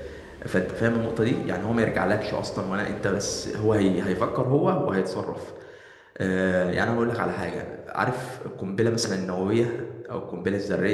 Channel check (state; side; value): identical; both; correlation 1.00